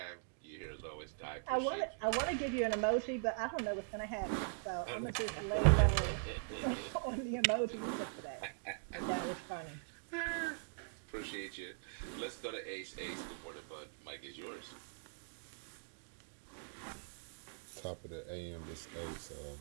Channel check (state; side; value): silent; left; digital silence